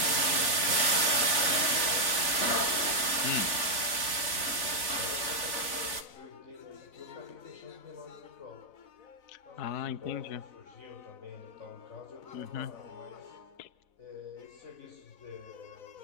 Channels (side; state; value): right; late; 4.0 ms